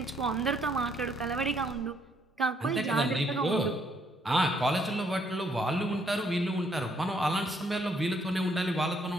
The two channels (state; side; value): normal; both; correlation 0.70